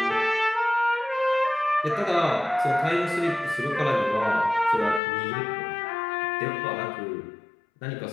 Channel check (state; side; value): drops out; right; at 5.0 s